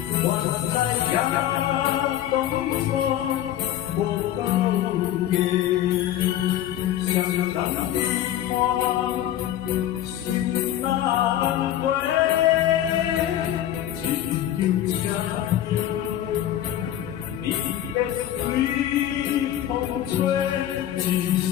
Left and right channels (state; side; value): quieter; right; 12.0 dB